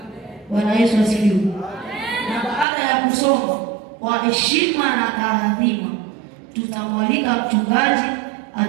Bwana Yesu asifiwe. Na baada ya kusoma kwa heshima na taadhima, tutamwalika mchungaji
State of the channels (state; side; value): drops out; left; at 2.7 s